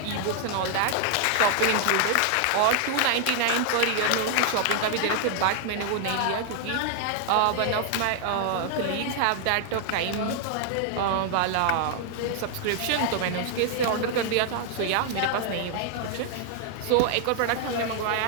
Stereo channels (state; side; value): different; both; correlation 0.00